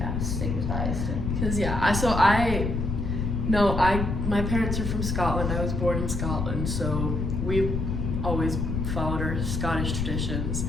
stigmatized. Because my parents are from Scotland. I was born in Scotland, so we've always followed our Scottish traditions.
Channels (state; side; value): noise; left; rumble, 1 dB below the sound